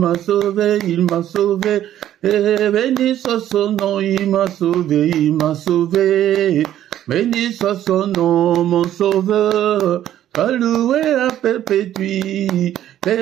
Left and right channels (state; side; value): quieter; left; 11.9 dB